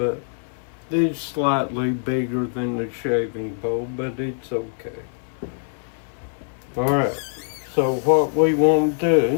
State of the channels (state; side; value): silent; right; 63 dB below the other